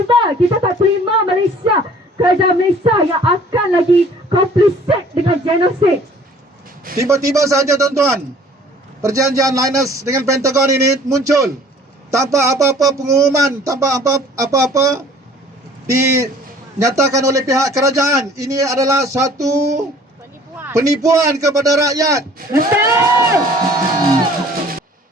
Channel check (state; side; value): normal; both; correlation 0.52